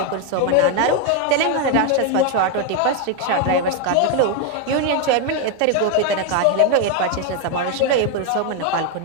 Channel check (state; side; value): different; both; correlation 0.01